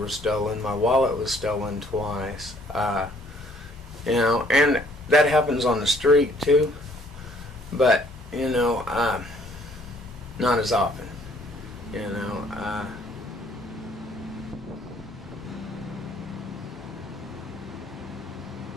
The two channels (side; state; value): both; normal; correlation 0.62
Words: stolen. My wallet was stolen twice. You know, and that happens on the street too. But, you know, not as often. You know,